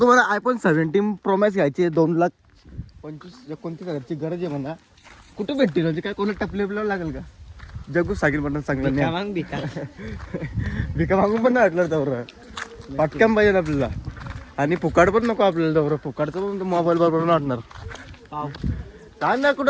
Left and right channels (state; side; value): identical; both; correlation 1.00